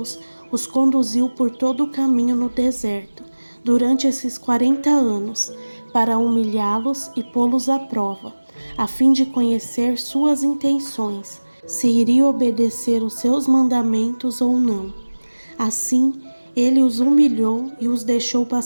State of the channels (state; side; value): inverted; both; correlation -1.00